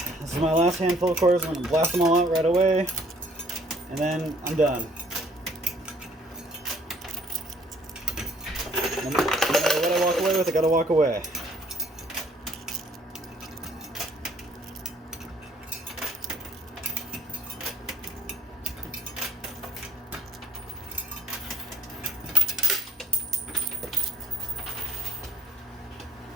this is my last handful of quarters. I'm going to blast them all out right away, and then I'm done. No matter what I walk away with, I gotta walk away.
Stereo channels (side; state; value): both; normal; correlation 0.63